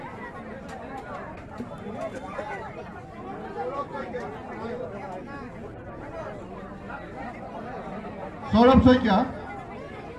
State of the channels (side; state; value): both; identical; correlation 1.00